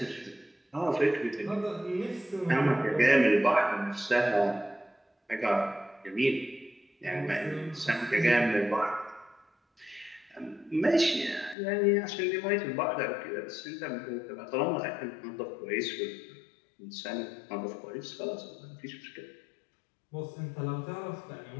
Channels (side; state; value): right; drops out; at 11.6 s